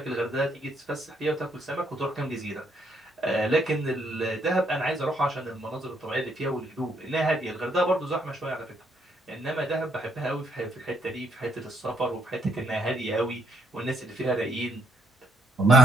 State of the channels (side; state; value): both; normal; correlation 0.71